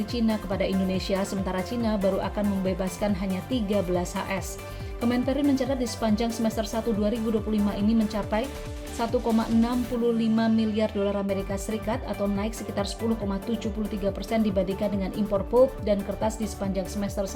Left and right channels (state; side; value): identical; both; correlation 1.00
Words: Cina kepada Indonesia, sementara Cina baru akan membebaskan hanya 13 HS. Kemenperin mencatat di sepanjang semester 1 2025 ini mencapai 1,65 miliar dolar Amerika Serikat atau naik sekitar 10,73% dibandingkan dengan impor pulp dan kertas di sepanjang semester